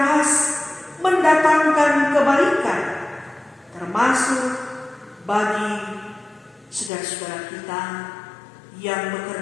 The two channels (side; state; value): right; drops out; at 6.9 s